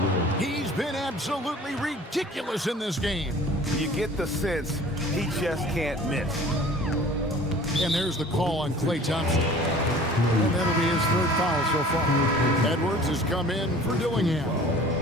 He's been absolutely ridiculous in this game. You get the sense he just can't miss. And there's the call on Klay Thompson. And that'll be his 3rd foul so far. Edwards has come in for Dillingham.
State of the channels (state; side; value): normal; both; correlation 0.47